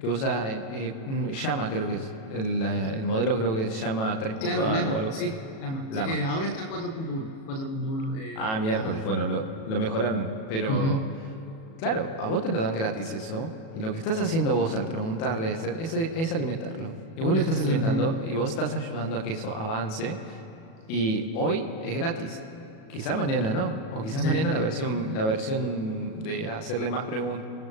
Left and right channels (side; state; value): right; late; 37 ms